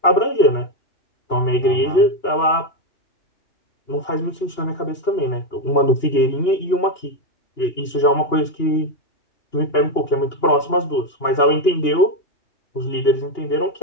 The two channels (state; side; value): late; right; 2.9 ms